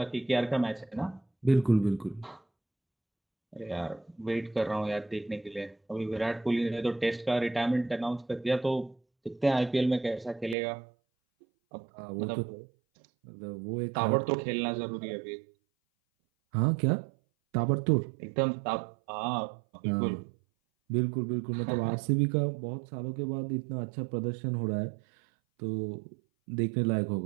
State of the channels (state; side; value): drops out; left; at 10.6 s